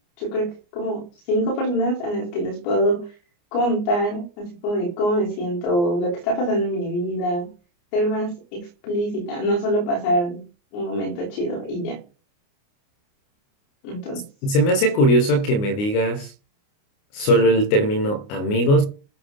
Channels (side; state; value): right; late; 29 ms